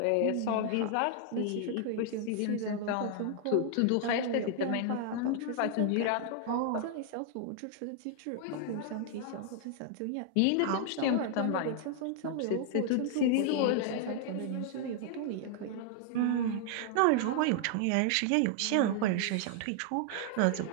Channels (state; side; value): different; both; correlation 0.00